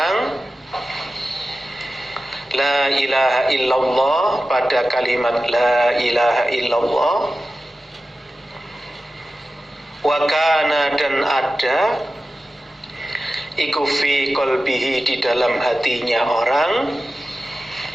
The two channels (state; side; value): normal; both; correlation 0.94